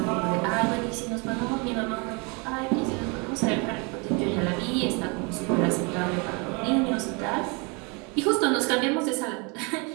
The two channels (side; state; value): left; quieter; 31.2 dB